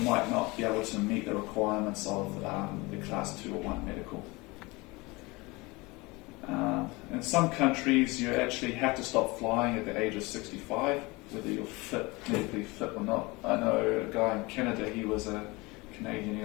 might not be able to meet the requirements of the Class 2 or 1 medical. In some countries, you actually have to stop flying at the age of 65, whether you're medically fit or not. I know a guy in Canada, he was a Canadian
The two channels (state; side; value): quieter; right; 24.1 dB